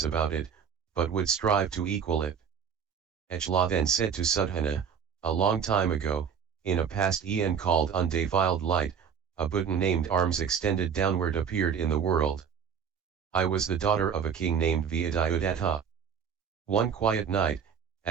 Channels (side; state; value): left; quieter; 7.3 dB